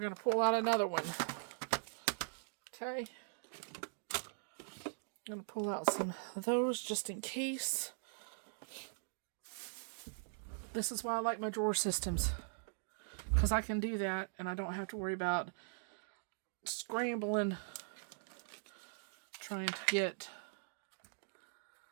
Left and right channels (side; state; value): left; silent; digital silence